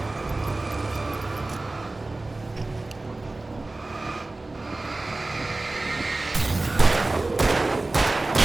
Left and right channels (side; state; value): left; quieter; 3.0 dB